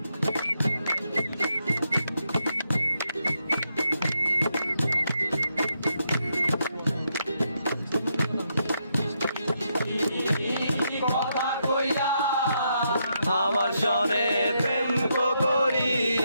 কথা কইয়া আমার সনে প্রেম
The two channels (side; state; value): both; inverted; correlation -0.80